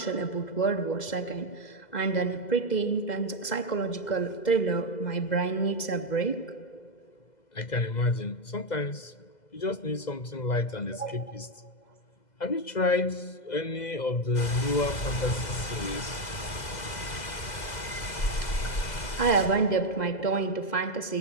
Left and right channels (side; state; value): right; late; 2.0 ms